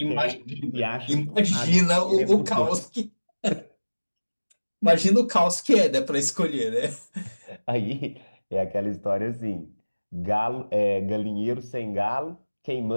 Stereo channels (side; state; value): both; inverted; correlation -1.00